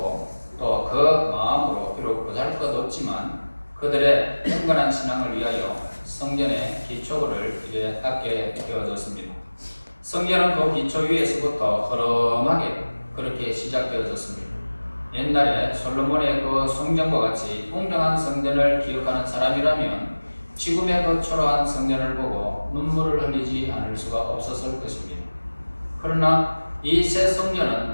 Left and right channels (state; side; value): inverted; both; correlation -1.00